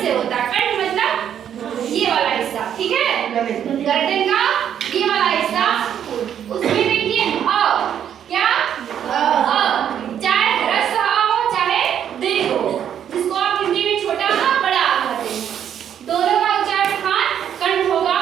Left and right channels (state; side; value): quieter; left; 9.4 dB